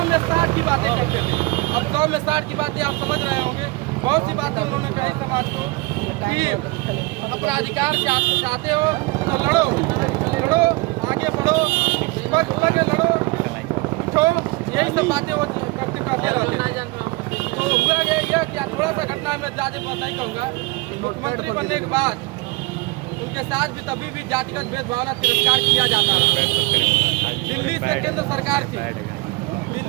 में 60 की बातें करते थे। अब 100 में 60 की बातें आप समझ रहे होंगे। बहुत सी बातें उन्होंने कही समाज को कि अपना अधिकार चाहते हो तो लड़ो, लड़ो, आगे बढ़ो, पग लड़ो, उठो, यही सब बातें वो करते रहते। तो हुआ गया यह कि थोड़ा सा घटना में ज़्यादा नहीं कहूँगा। मुख्यमंत्री बनने के बाद उनके साथ भी तभी भी जातिगत भेदभाव तिरस्कार किया जाता है। दिल्ली से केंद्र सरकार थी,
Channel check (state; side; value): quieter; left; 24.1 dB